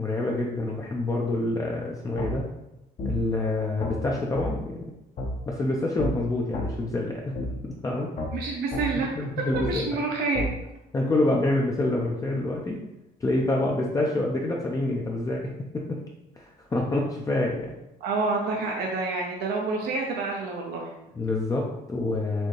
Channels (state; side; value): normal; both; correlation 0.64